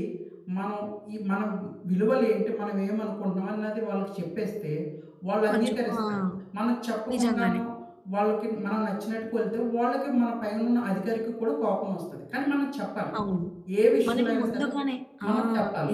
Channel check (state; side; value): identical; both; correlation 1.00